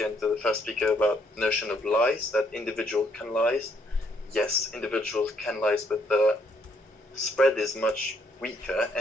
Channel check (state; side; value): normal; both; correlation 0.70